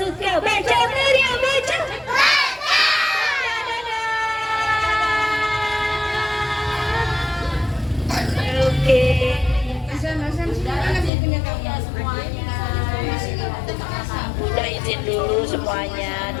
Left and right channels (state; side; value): drops out; right; at 11.1 s